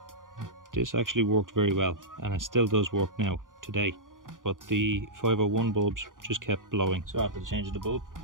This actually worked very well, and it still does work now today. But the 501 bulbs just kept blowing. So after the change of the bulb,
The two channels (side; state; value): left; late; 0.89 ms